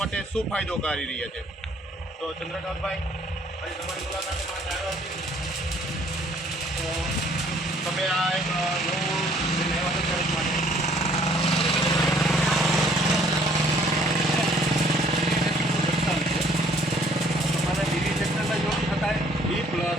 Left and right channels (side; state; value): both; normal; correlation 0.60